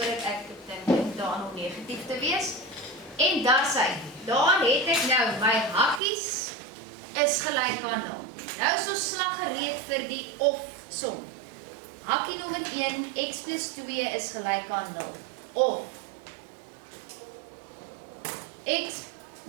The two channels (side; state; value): left; drops out; at 6.0 s